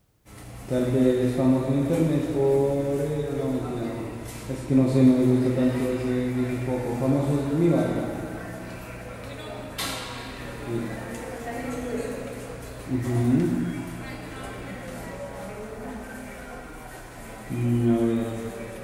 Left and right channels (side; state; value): both; identical; correlation 1.00